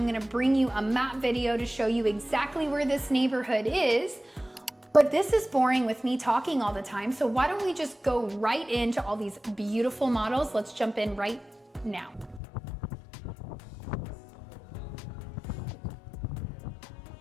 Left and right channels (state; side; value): drops out; right; at 12.4 s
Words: gonna bring you a map video to show you exactly where this neighborhood is. But this is boring with me talking all the time, so why don't we just go right into all these beautiful models? Let's jump in right now.